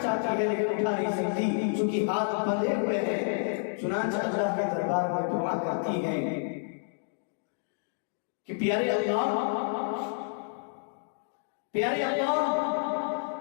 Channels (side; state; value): right; silent; digital silence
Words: چاہتی ہے لیکن اٹھا نہیں سکتی چونکہ ہاتھ بندھے ہوئے ہیں۔ چنانچہ اللہ کے دربار میں دعا کرتی ہے کہ پیارے اللہ